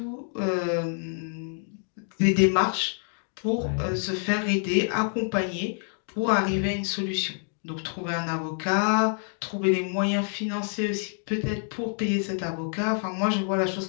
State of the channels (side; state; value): right; silent; 55 dB below the other